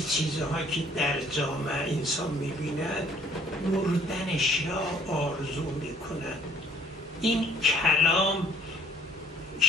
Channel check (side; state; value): both; normal; correlation 0.60